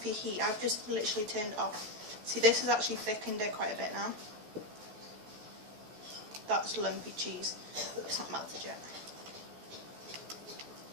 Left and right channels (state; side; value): late; left; 14 ms